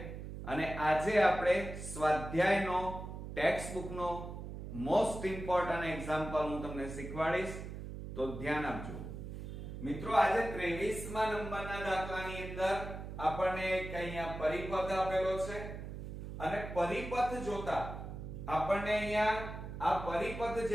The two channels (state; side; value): noise; right; hum, 8 dB below the sound